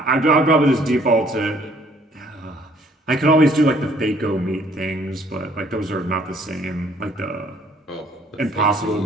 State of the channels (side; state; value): both; normal; correlation 0.61